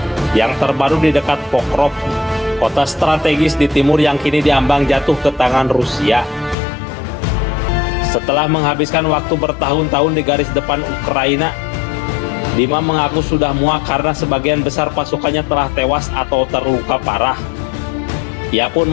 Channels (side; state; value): right; drops out; at 6.6 s